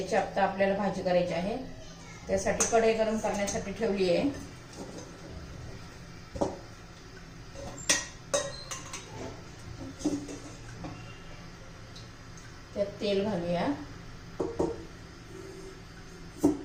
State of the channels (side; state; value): both; identical; correlation 1.00